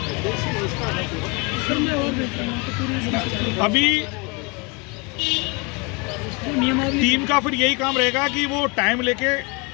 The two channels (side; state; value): right; quieter; 29.7 dB